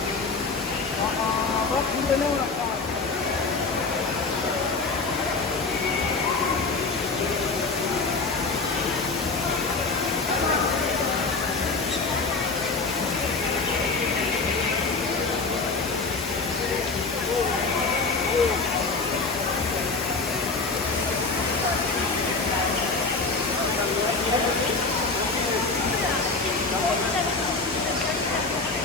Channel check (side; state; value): right; quieter; 4.0 dB